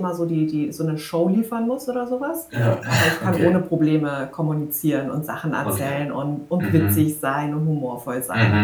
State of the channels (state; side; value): identical; both; correlation 1.00